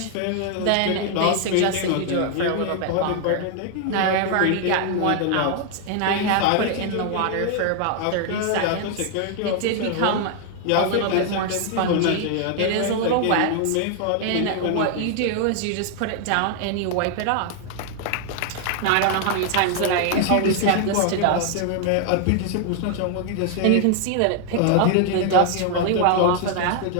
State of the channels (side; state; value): both; different; correlation 0.00